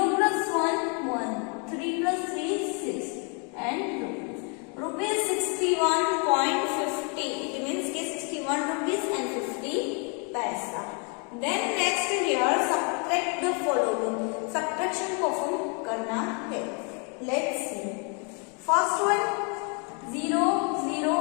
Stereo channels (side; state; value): right; quieter; 36.3 dB